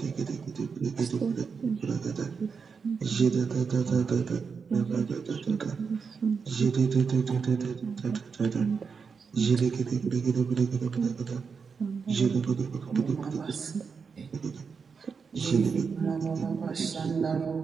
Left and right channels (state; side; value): quieter; left; 5.6 dB